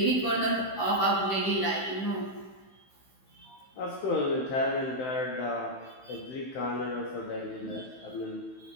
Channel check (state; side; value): late; right; 15 ms